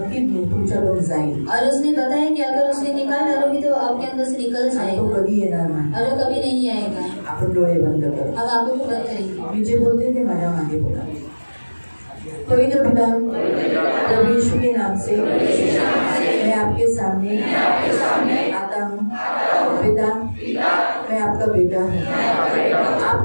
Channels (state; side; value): inverted; both; correlation -1.00